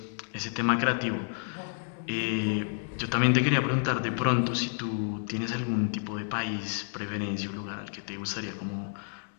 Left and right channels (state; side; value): silent; right; 58 dB below the other